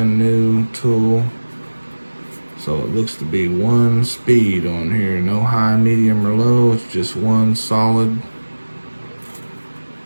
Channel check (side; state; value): both; inverted; correlation -1.00